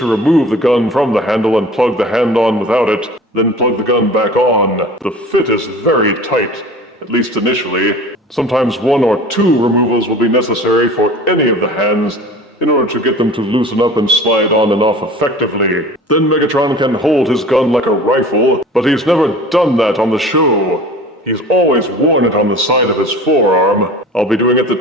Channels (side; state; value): both; normal; correlation 0.41